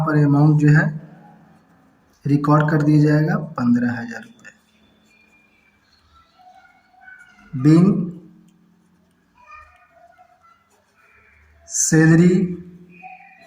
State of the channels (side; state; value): both; identical; correlation 1.00